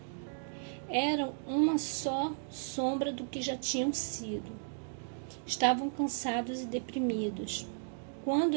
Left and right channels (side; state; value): left; silent; digital silence